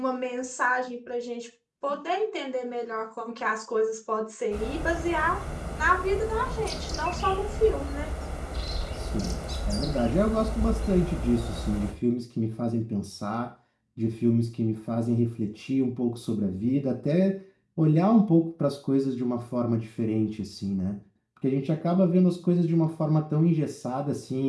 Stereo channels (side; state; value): both; identical; correlation 1.00